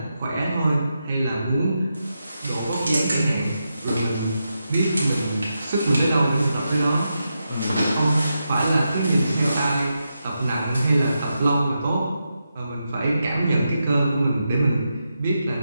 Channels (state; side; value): inverted; both; correlation -0.86